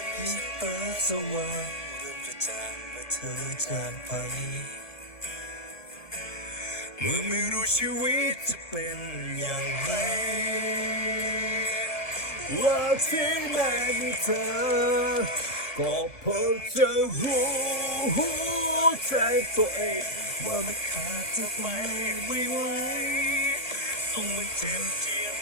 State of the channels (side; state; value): right; late; 1.6 ms